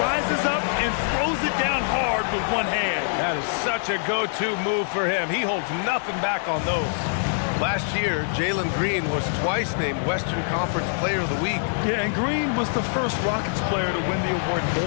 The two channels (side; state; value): right; silent; digital silence